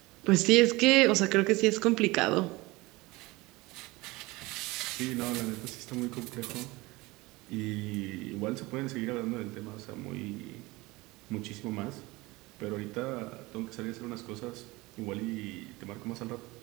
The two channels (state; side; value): quieter; left; 21.9 dB